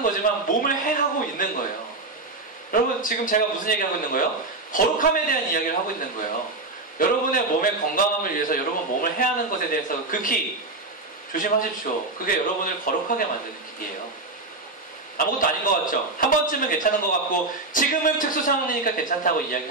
거지만 몸을 해하고 있는 거예요. 여러분 지금 제가 무슨 얘기하고 있는 거예요? 거룩함에 대한 이야기를 하고 있는 거예요. 여러분의 몸의 건강함을 위해서 여러분 몸을 해하는 것에 대해서 극히 조심하십시오. 그게 여러분을 거룩하게 만드는 길이에요. 아무것도 아닌 것 같죠? 한 번쯤은 괜찮은 것 같고 지금은 특수 상황이니까 괜찮다고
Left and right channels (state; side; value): quieter; left; 3.2 dB